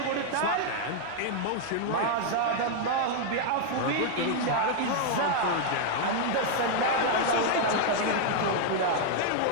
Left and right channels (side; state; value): both; different; correlation 0.00